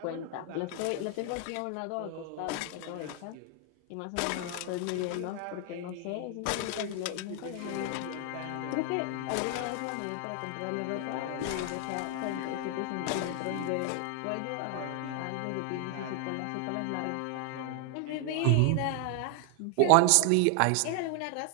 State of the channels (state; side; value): different; both; correlation 0.00